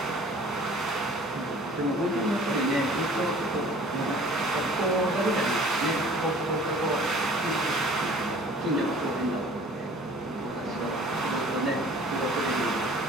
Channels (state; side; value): normal; both; correlation 0.49